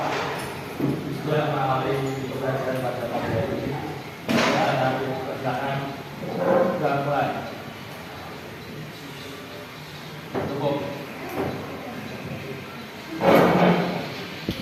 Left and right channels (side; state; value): both; identical; correlation 1.00